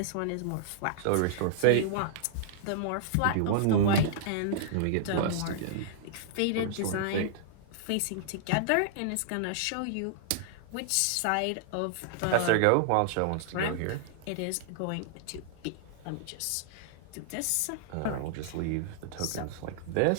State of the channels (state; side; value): different; both; correlation -0.01